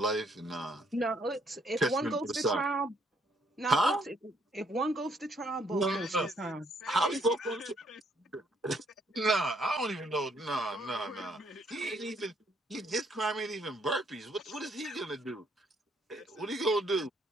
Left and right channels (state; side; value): normal; both; correlation 0.69